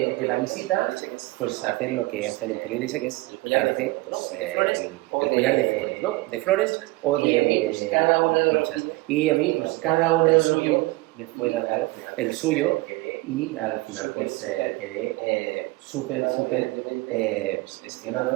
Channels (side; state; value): left; quieter; 21.0 dB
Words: la visita, pues hacen lo que hacen en Polinesia, que es darse pues, el collar de flores, ¿no? De flores o de conchas. Y a mí, pues cada uno de los niños me fue dado el suyo y al final pues quedé súper